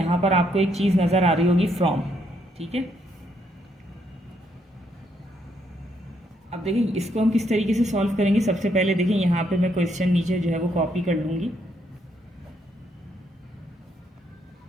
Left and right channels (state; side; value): normal; both; correlation 0.74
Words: पर आपको एक चीज़ नज़र आ रही होगी फ्रॉम, ठीक है। अब देखिए इसको हम किस तरीके से सॉल्व करेंगे। सबसे पहले देखिए यहाँ पे मैं क्वेश्चन नीचे जो है वो कॉपी कर लूँगी।